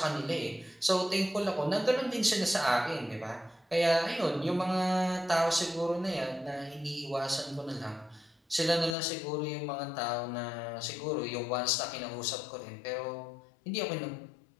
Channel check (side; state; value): right; drops out; at 9.0 s